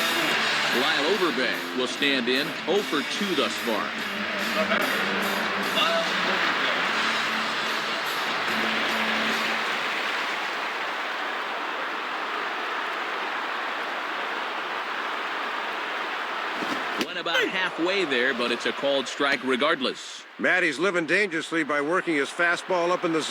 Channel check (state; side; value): identical; both; correlation 1.00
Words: Lyle Overbay will stand in, 0 for 2 thus far. The batter, Lyle Overbay. Went about halfway there, but it's a called strike regardless. Matt, he's living dangerously by working his fastball up in the